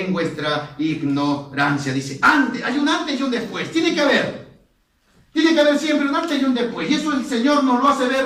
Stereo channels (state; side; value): identical; both; correlation 1.00